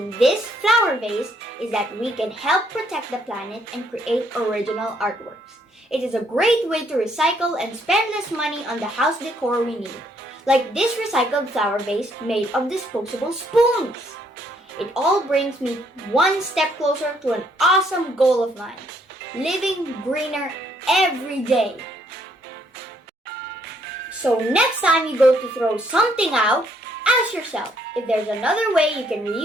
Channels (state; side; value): normal; both; correlation 0.69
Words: this flower vase is that we can help protect the planet and create original artworks. It is a great way to recycle and spend less money on the house decor we need, like this recycled flower vase made of disposable spoons. It all brings me one step closer to an awesome goal of mine, living greener every day. So next time you go to throw something out, ask yourself if there's another way you can